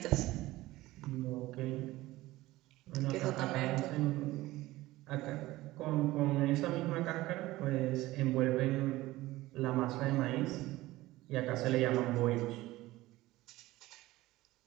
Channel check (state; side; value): quieter; left; 17.8 dB